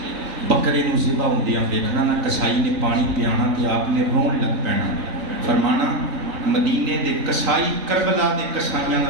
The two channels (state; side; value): late; left; 3.9 ms